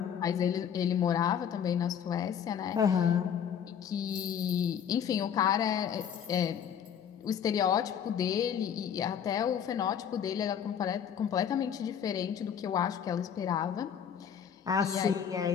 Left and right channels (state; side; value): quieter; right; 8.3 dB